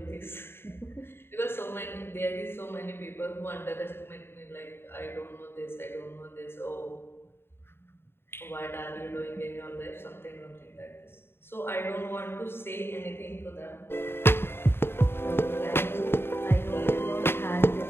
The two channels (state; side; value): late; right; 0.11 ms